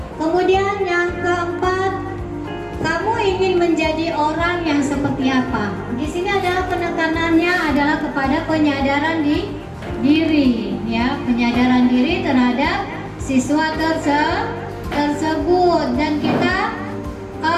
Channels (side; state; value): both; identical; correlation 1.00